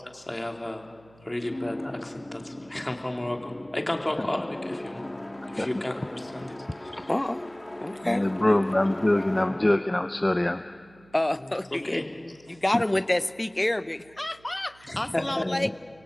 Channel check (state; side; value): noise; right; hum, 27 dB below the sound